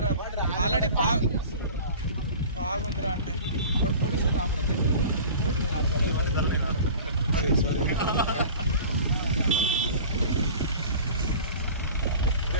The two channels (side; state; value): both; inverted; correlation -0.40